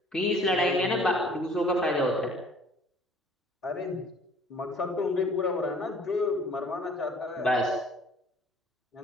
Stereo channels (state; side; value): normal; both; correlation 0.54